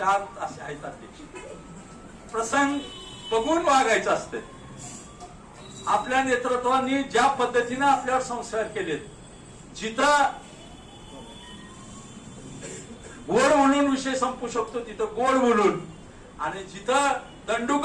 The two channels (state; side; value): identical; both; correlation 1.00